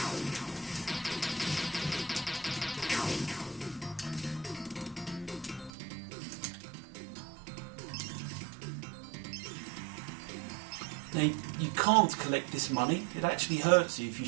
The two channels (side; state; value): left; drops out; at 5.7 s